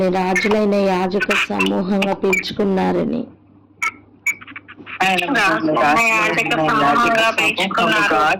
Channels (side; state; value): both; identical; correlation 1.00